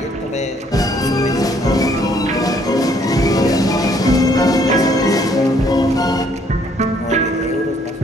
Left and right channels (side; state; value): both; normal; correlation 0.65